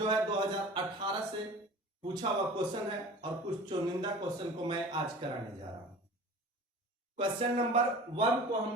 है 2018 से पूछा हुआ क्वेश्चन है और कुछ चुनिंदा क्वेश्चन को मैं आज कराने जा रहा हूं। क्वेश्चन नंबर 1 को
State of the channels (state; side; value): normal; both; correlation 0.40